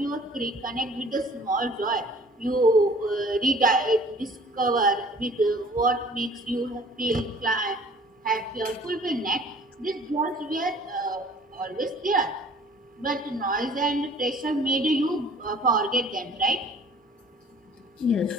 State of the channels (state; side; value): normal; both; correlation 0.51